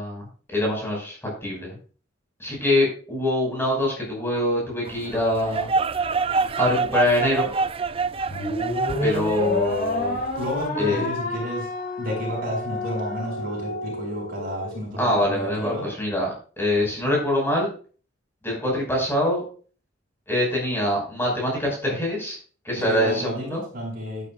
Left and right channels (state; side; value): normal; both; correlation 0.29